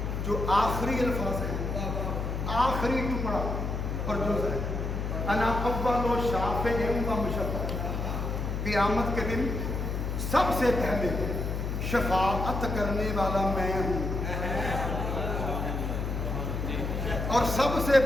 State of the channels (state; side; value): noise; left; hum, 2 dB below the sound